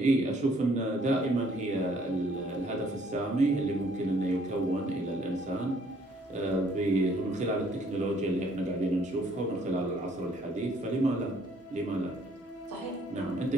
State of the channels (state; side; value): normal; both; correlation 0.63